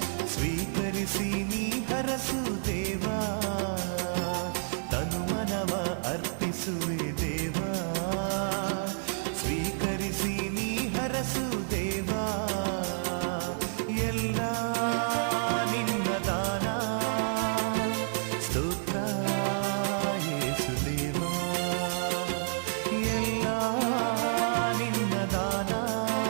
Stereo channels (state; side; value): silent; left; digital silence